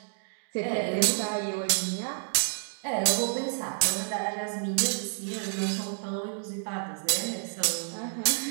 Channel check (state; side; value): silent; left; digital silence